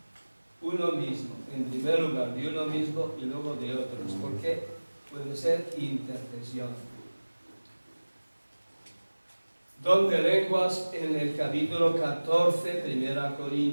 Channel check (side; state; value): both; inverted; correlation -1.00